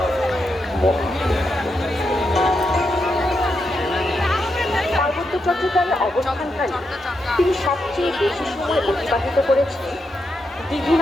পার্বত্য চট্টগ্রামে অবস্থানকালে তিনি সবচেয়ে বেশি সময় অতিবাহিত করেছেন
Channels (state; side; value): normal; both; correlation 0.84